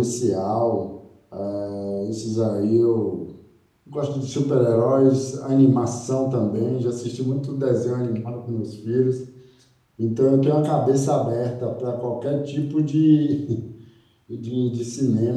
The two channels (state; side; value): identical; both; correlation 1.00